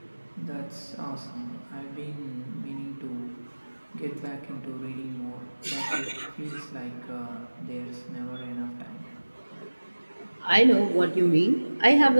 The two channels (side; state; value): both; inverted; correlation -1.00